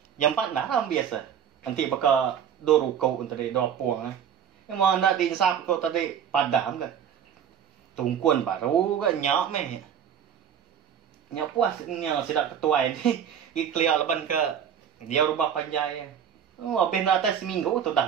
Yang empat dah ram biasa. Nanti bakal do ruko tadi do puang. Yang mana din sap kau tadi padam ke. Tungkuan baru ke nyak meh. Nyak puas nyak sidak ketuai ni. Ikliar leban ke dia rubah panjai. Oh, habis nak atas seminggu tu dah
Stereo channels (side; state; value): left; quieter; 8.5 dB